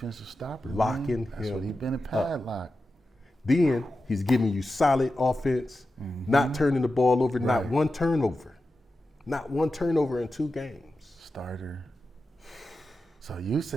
stopper. Locking That's him what he been a padlock. then he's giving you solid offense, not turning the ball over, not one turnover. Not one turnover in 2 games. Starter. So you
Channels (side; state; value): both; normal; correlation 0.91